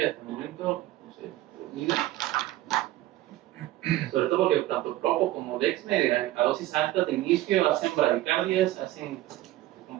hasta el momento, no sé, sobre todo porque tanto Propo como Dexme a dosis altas de inicio hacen bradicardias,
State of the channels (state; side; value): quieter; left; 15.5 dB